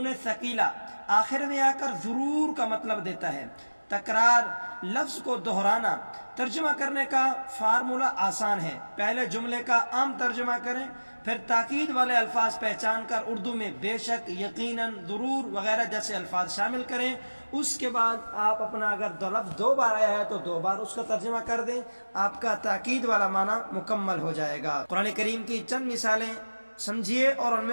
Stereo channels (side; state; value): both; inverted; correlation -1.00